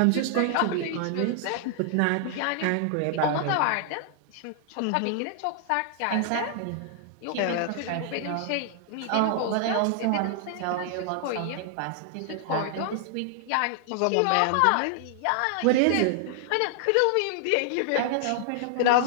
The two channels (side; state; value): both; different; correlation 0.00